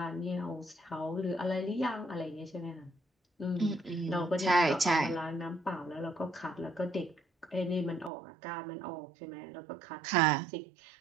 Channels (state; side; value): drops out; left; at 8.1 s